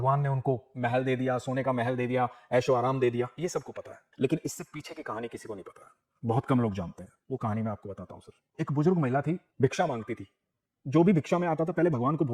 ने उनको महल दे दिया, सोने का महल दे दिया, ऐशो आराम दे दिया। ये सबको पता है, लेकिन इससे पीछे की कहानी किसी को नहीं पता है, बहुत कम लोग जानते हैं। वो कहानी मैं आपको बताता हूं सर। एक बुजुर्ग महिला थी, भिक्षा मांगती थी। जो भी भिक्षा में आता था पहले भगवान को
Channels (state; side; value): identical; both; correlation 1.00